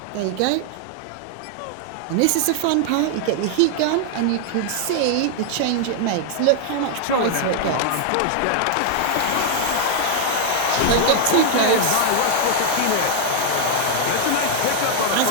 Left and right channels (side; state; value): both; different; correlation 0.00